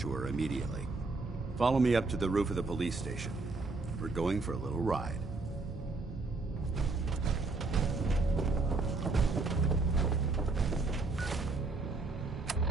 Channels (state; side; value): quieter; left; 3.6 dB